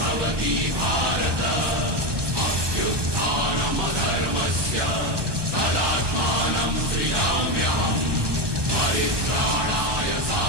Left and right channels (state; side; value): late; left; 1.2 ms